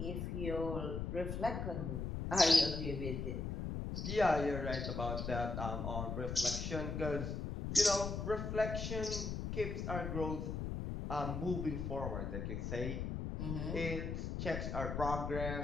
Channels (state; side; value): noise; left; rumble, 3 dB below the sound